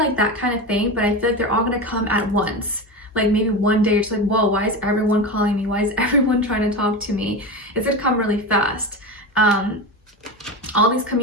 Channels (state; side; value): normal; both; correlation 0.22